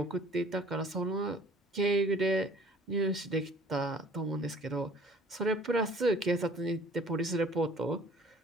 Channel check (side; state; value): both; normal; correlation 0.52